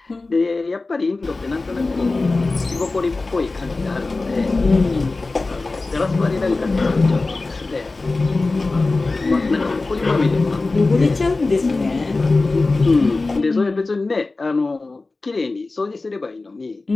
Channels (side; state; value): right; quieter; 3.5 dB